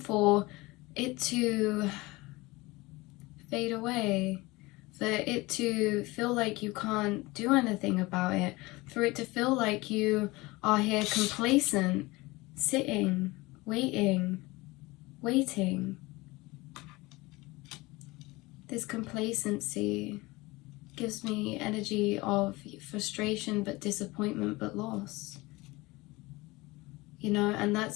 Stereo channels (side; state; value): right; quieter; 22.0 dB